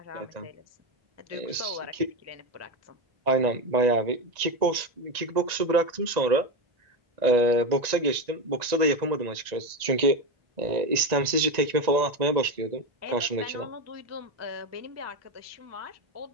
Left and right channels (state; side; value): late; left; 1.9 ms